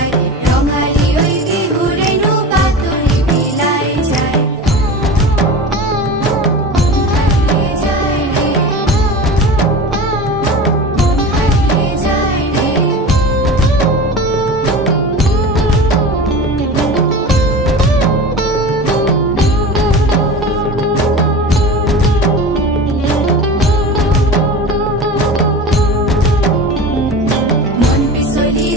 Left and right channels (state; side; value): normal; both; correlation 0.32